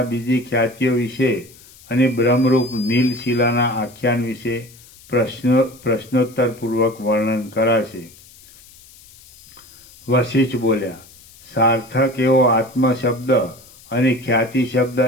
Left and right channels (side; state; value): left; noise; hiss, 23 dB below the sound